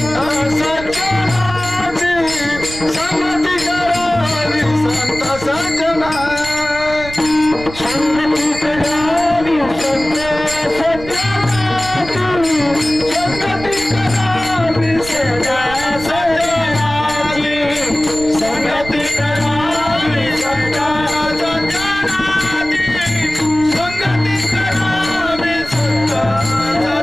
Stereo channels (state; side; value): noise; right; rumble, 13 dB below the sound